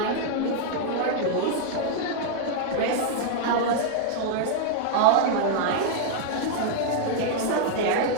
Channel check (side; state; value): both; different; correlation -0.01